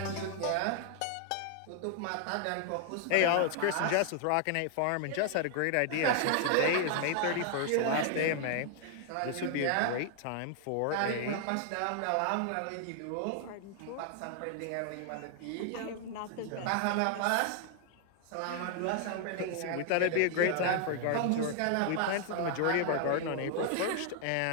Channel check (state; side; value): different; both; correlation 0.00